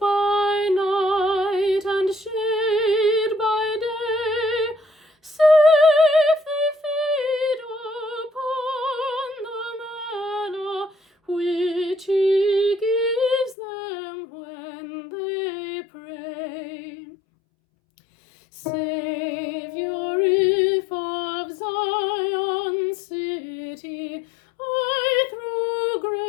night and shade by day. Safe they feed upon the manna which he gives them when they pray. Savior, if of Zion city I through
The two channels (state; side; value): drops out; right; at 13.6 s